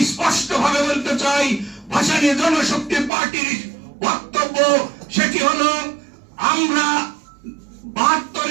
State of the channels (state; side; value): drops out; left; at 3.1 s